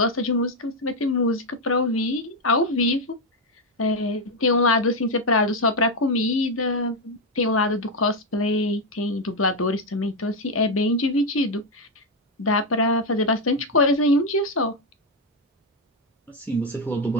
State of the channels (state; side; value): normal; both; correlation 0.05